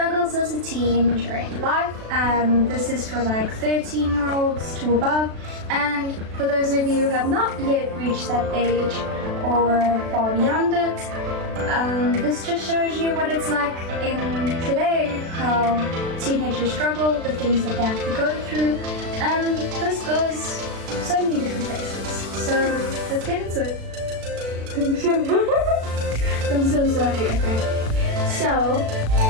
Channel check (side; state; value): left; late; 36 ms